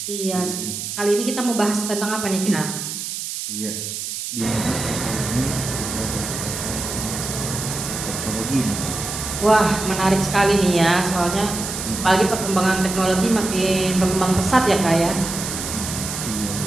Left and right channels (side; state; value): right; noise; hiss, 5 dB below the sound